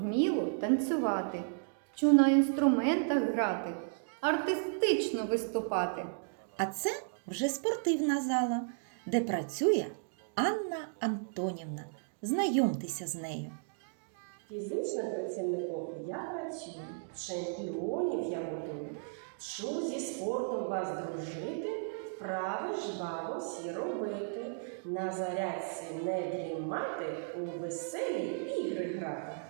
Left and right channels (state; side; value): silent; left; digital silence